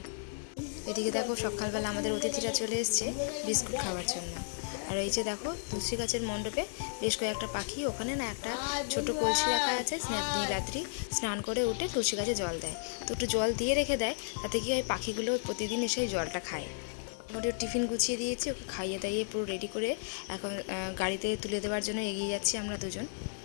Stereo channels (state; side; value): silent; right; digital silence